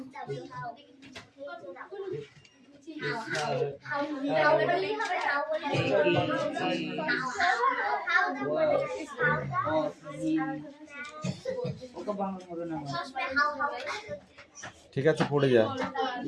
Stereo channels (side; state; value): both; identical; correlation 1.00